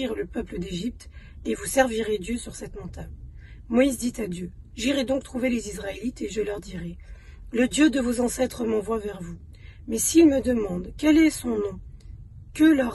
le peuple d'Égypte, et vous servirez Dieu sur cette montagne. » Moïse dit à Dieu, « J'irai donc trouver les Israélites et je leur dirai, « Le Dieu de vos ancêtres m'envoie vers vous. Mais s'ils me demandent, quel est son nom, que leur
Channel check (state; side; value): identical; both; correlation 1.00